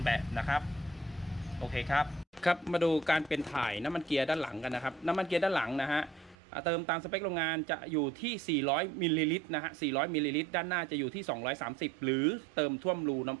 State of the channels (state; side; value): drops out; left; at 6.4 s